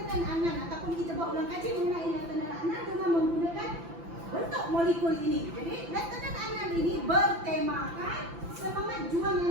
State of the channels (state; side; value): late; left; 5.9 ms